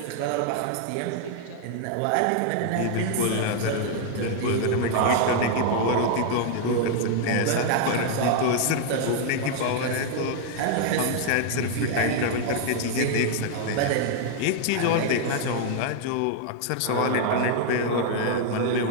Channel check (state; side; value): different; both; correlation 0.00